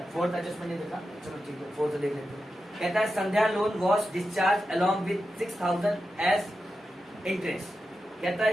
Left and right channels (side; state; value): both; normal; correlation 0.90